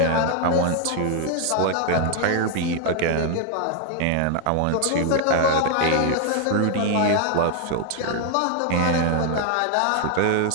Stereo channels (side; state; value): both; different; correlation 0.00